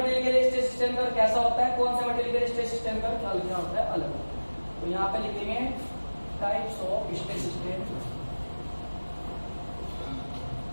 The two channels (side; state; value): both; inverted; correlation -1.00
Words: के लिए स्ट्रेस स्ट्रेन कर्व कैसा होता है, कौन से मटेरियल के लिए स्ट्रेस स्ट्रेन कर्व क्या होता है, अलग होता है। तो यहाँ पे लिखेंगे types of stress strain